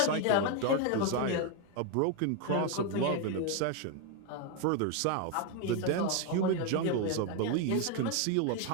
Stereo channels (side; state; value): both; different; correlation 0.01